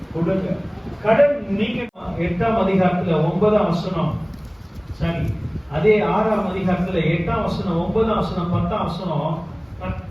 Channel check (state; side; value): identical; both; correlation 1.00